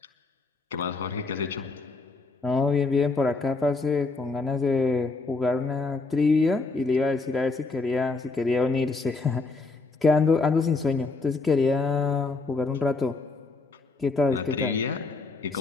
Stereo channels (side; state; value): right; quieter; 3.7 dB